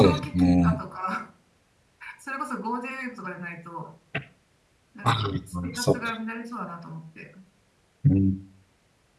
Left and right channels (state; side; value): identical; both; correlation 1.00